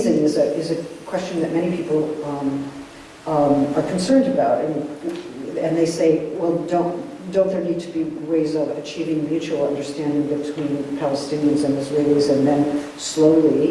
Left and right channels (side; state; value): both; identical; correlation 1.00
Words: is a question that many people are concerned about, and they say, well, don't there need to be ways of achieving mutual understanding between Palestinians and Israelis, and then